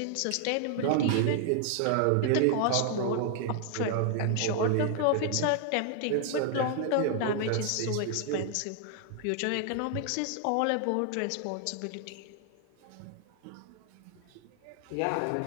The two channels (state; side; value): different; both; correlation 0.00